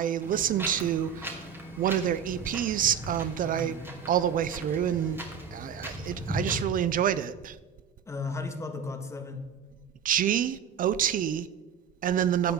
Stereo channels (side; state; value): left; quieter; 7.9 dB